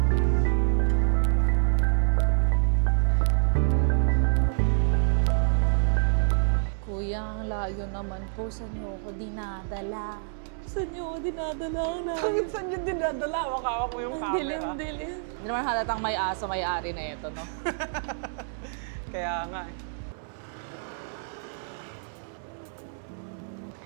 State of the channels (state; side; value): silent; left; 60 dB below the other